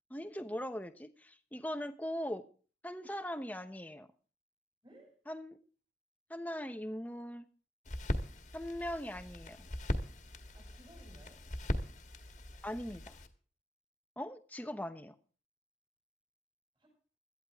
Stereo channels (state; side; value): normal; both; correlation 0.90